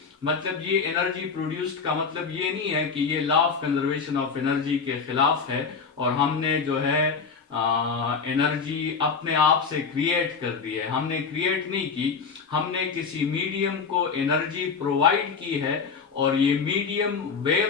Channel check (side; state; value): right; quieter; 5.5 dB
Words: मतलब ये एनर्जी प्रोड्यूस्ड का मतलब ये नहीं है कि ये law of conservation of energy के खिलाफ है और हमने जो है एनर्जी अपने आप से क्रिएट कर दी है। हमने क्रिएट नहीं की, हमने किसी मीडियम को एनर्जी प्रोवाइड की है और ये मीडियम